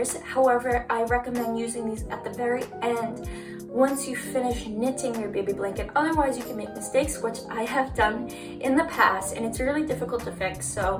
However, I recommend using these at the very end once you finish knitting your baby blanket. Otherwise, you can make mistakes, which I have done in the past, and it's really difficult to fix.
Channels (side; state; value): both; identical; correlation 1.00